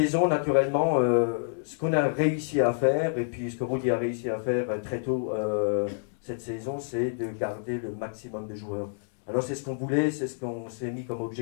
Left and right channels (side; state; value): right; silent; digital silence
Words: naturellement, ce qu'on a réussi à faire, et puis ce que Rudi a réussi à faire très tôt cette saison, c'est de garder le maximum de joueurs. Alors c'est ce qu'on voulait, c'est ce qu'on s'est mis comme